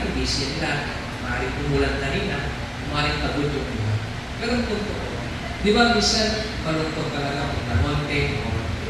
busy nila. Maring umulan kanina. Maring pagod yung iba. Pero ang punto ko, Di ba, minsan, malungkot talaga kung namonte o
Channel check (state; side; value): identical; both; correlation 1.00